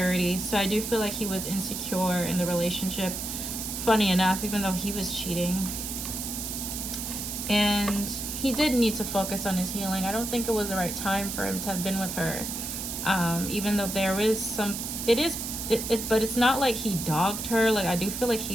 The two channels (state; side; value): noise; right; hiss, 5 dB below the sound